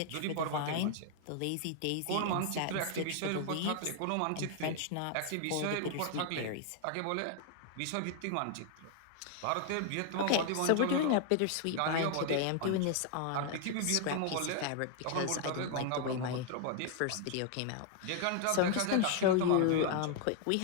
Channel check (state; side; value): different; both; correlation 0.00